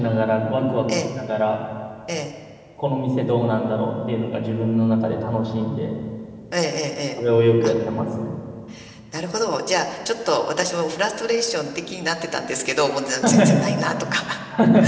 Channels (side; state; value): both; identical; correlation 1.00